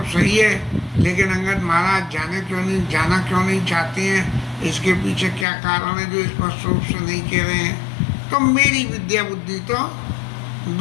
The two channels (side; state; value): right; drops out; at 5.5 s